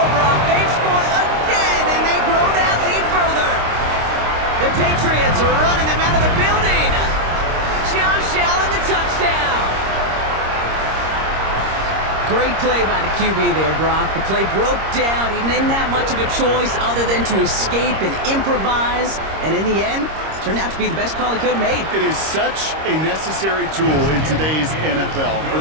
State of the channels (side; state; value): left; late; 26 ms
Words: Brock. They've scored again, and they grow that lead further. The Patriots are running them out of the building. Josh Allen, the touchdown. Great play by the QB there, Brock. The play broke down. He didn't have much of a choice other than to escape and improvise. And in the end, turned out to be the best call he could have made. It is such a necessary tool in today's NFL for